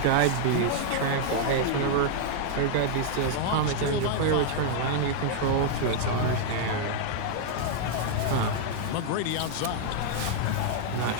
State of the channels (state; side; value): different; both; correlation -0.01